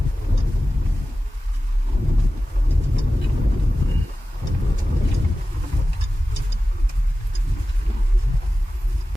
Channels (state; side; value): normal; both; correlation 0.95